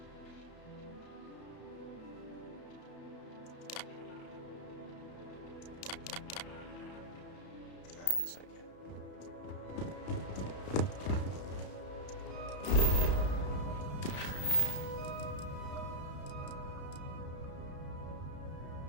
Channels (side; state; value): right; late; 32 ms